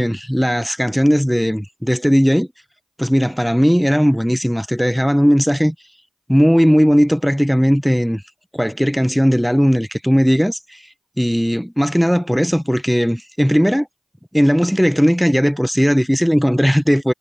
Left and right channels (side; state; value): both; identical; correlation 1.00